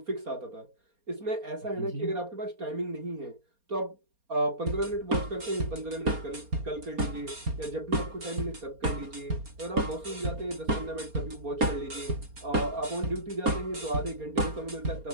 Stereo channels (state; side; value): late; left; 4.3 ms